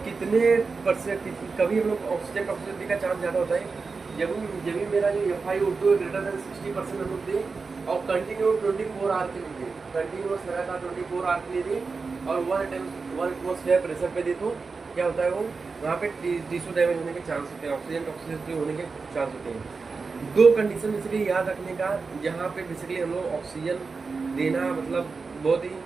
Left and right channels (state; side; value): quieter; left; 4.5 dB